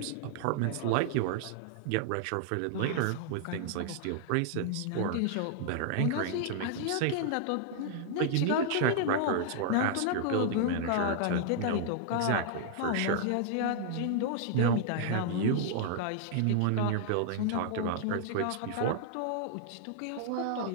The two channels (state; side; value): different; both; correlation -0.01